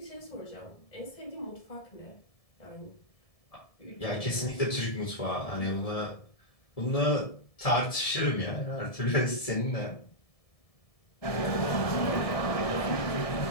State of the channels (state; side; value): late; right; 1.7 ms